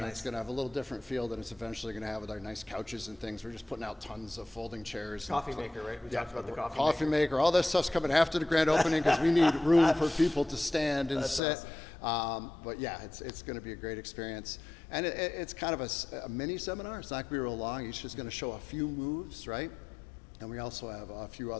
it's going to have a little different feel than it's eventually going to have with our nice couches and things. We're just putting out tons of folding chairs. Coffee maker, right? We talked about the coffee maker. All that stuff's coming after the grand opening because we need room for people to stand and sit. Awesome. But yeah, it's going to be a great experience, and it's kind of a mini seminar. It's not going to be real long. Each is going to show a few moves, right? And we also have a few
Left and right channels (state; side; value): drops out; right; at 11.4 s